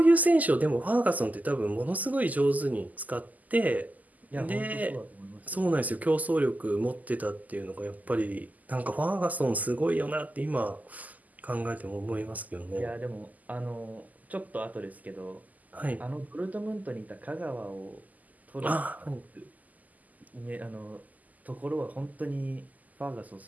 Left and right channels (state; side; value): late; left; 0.079 ms